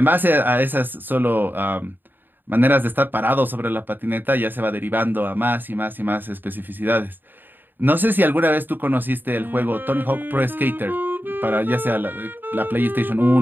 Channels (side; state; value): left; late; 0.093 ms